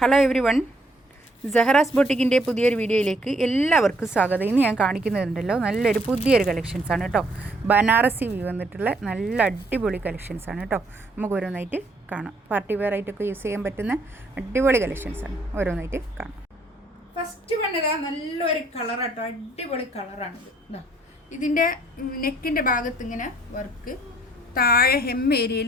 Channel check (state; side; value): normal; both; correlation 0.66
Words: Hello every one, സഹറാസ് ബൊട്ടിക്കിൻ്റെ പുതിയൊരു വീഡിയോയിലേക്ക് എല്ലാവർക്കും സ്വാഗതം. ഇന്ന് ഞാൻ കാണിക്കുന്നുണ്ടല്ലോ നല്ലൊരു പുതിയൊരു കളക്ഷൻസാണ് കേട്ടോ. ബനാറസി വ്യൂ വന്നിട്ടുള്ള നല്ല അടിപൊളി കളക്ഷൻസാണ് കേട്ടോ. നമുക്ക് ഓരോന്നായിട്ട് കാണാം. പാർട്ടി വെയർ ആയിട്ടൊക്കെ യൂസ് ചെയ്യാൻ പറ്റുന്ന അടിപൊളി കളക്ഷൻസാണ്. ഓരോന്നായിട്ട് കാണാം. ഫസ്റ്റ് വന്നതാ നല്ലൊരു കളർ കേട്ടോ, അടിപൊളി കളറാണിത്. ഇതാ ഇതിൻ്റെ നെക്കിൻ്റെ ഭാഗത്ത് ഇങ്ങനെ വർക്ക്, താഴെ ഹെം